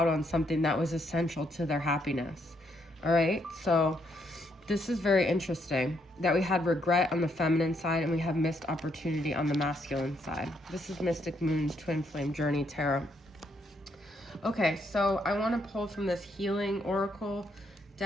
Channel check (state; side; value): normal; both; correlation 0.74